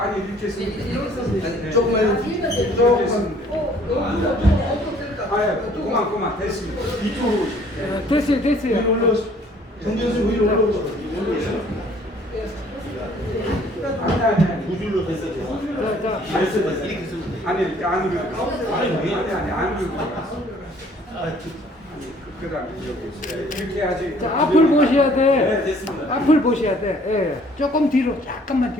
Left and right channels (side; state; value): both; normal; correlation 0.58